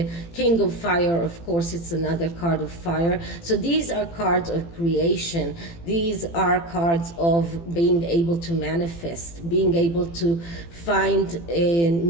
King of Fire, of course, it's another card of fire. So these are cards of creation. These are cards of being able to manifest, being able to find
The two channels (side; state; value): right; late; 18 ms